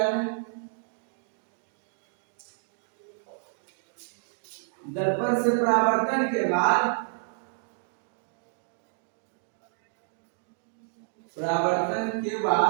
दर्पण से परावर्तन के बाद, परावर्तन के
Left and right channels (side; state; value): left; silent; digital silence